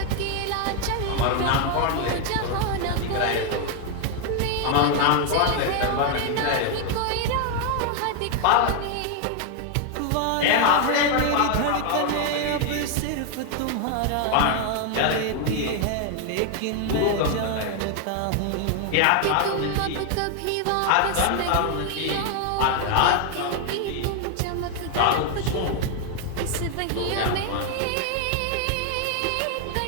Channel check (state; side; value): different; both; correlation 0.01